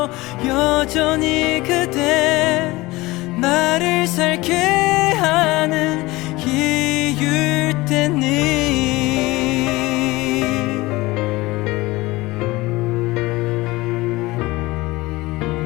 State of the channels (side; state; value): right; quieter; 20.6 dB